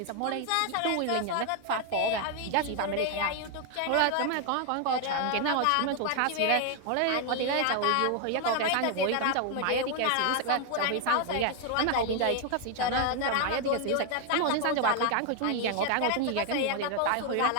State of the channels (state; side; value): different; both; correlation 0.01